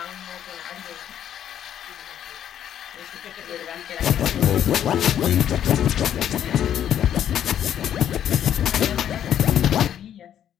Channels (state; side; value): quieter; right; 10.1 dB